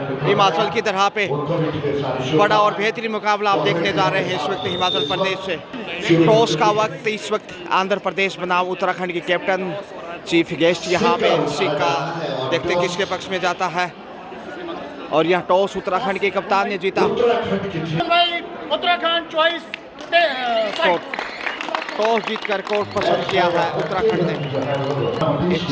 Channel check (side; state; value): both; identical; correlation 1.00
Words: हिमाचल की तरह पे। बड़ा और बेहतरीन मुकाबला आप देखने जा रहे हैं इस वक्त हिमाचल प्रदेश से। टॉस का वक्त इस वक्त आंध्र प्रदेश बनाम उत्तराखंड की कैप्टन चीफ गेस्ट यहाँ पे सिक्का देखते किसके पक्ष में जाता है, और यह टॉस उत्तराखंड के कप्तान ने जीता। उत्तराखंड चॉइस टॉस जीतकर कोर्ट पसंद किया है उत्तराखंड ने। एक